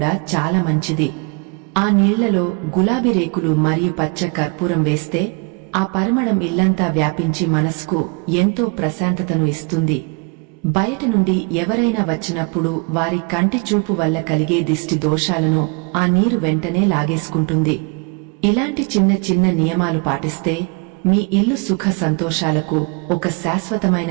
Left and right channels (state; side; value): quieter; left; 32.1 dB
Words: చాలా మంచిది. ఆ నీళ్లలో గులాబీ రేకులు మరియు పచ్చ కర్పూరం వేస్తే ఆ పరిమళం ఇల్లంతా వ్యాపించి మనసుకు ఎంతో ప్రశాంతతను ఇస్తుంది. బయట నుండి ఎవరైనా వచ్చినప్పుడు వారి కంటి చూపు వల్ల కలిగే దిష్టి దోషాలను ఆ నీరు వెంటనే లాగేసుకుంటుంది. ఇలాంటి చిన్న చిన్న నియమాలు పాటిస్తే మీ ఇల్లు సుఖ సంతోషాలకు ఒక